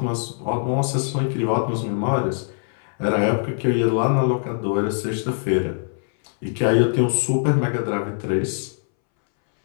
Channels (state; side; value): silent; right; 64 dB below the other